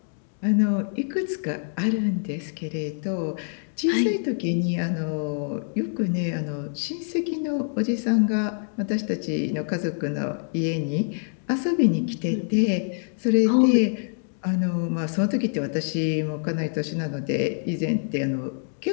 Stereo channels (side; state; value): right; silent; digital silence